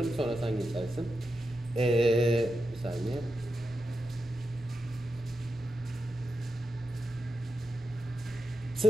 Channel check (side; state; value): both; normal; correlation 0.88